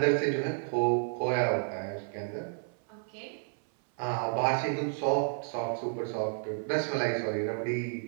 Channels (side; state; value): left; silent; 57 dB below the other